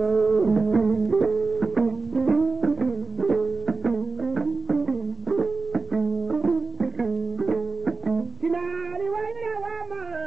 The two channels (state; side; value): quieter; left; 3.9 dB